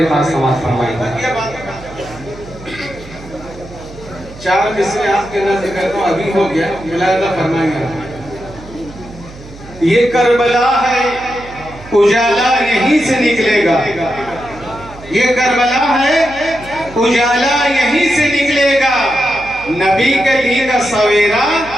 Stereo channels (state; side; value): noise; right; hum, 18 dB below the sound